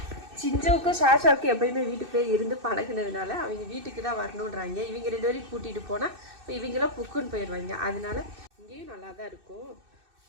சிஞ்சவுக்கும் ஷாஷாவுக்கும் எப்பயுமே வீட்டுக்கு போய் இருந்து பழகினதுனால அவங்க வீட்டுக்கு தான் வரணுன்றாங்க. இவங்க 2 பேரையும் கூட்டிகிட்டு போனால் இப்போ இவங்களாம் புக்குன்னு போயிடுவாங்க. அதனால இங்கேயும் நல்லா தான் இருக்கும்.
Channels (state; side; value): late; left; 2.6 ms